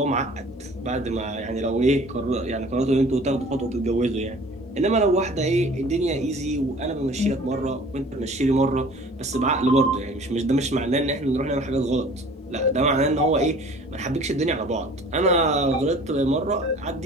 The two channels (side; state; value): both; normal; correlation 0.48